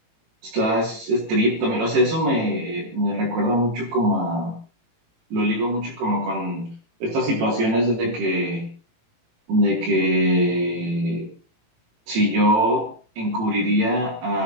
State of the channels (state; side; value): late; left; 18 ms